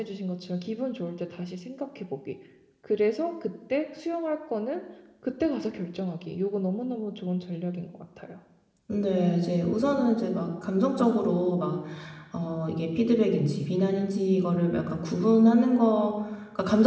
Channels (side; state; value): both; identical; correlation 1.00